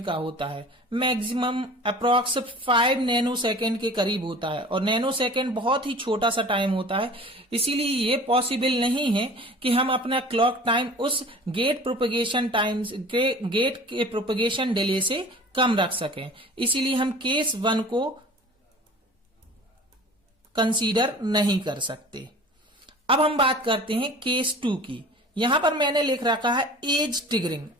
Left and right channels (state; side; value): normal; both; correlation 0.42